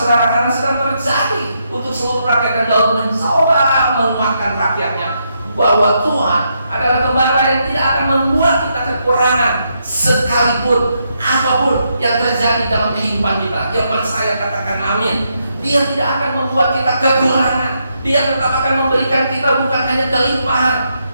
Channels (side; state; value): both; inverted; correlation -0.79